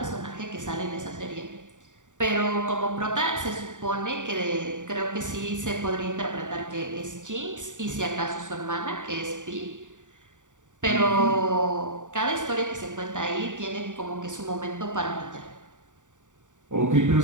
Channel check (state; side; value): late; left; 0.86 ms